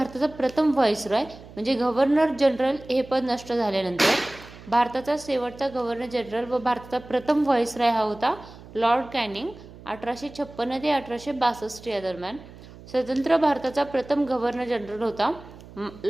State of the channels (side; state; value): right; noise; hum, 19 dB below the sound